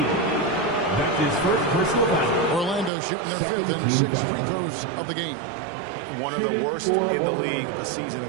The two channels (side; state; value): left; drops out; at 2.9 s